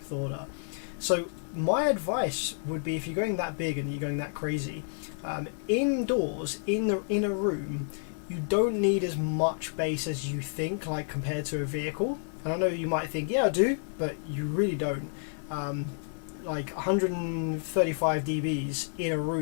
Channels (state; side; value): silent; right; digital silence